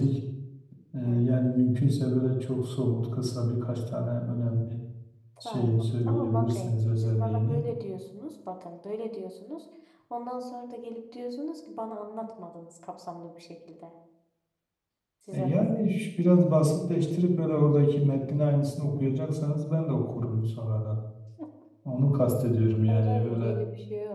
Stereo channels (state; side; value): identical; both; correlation 1.00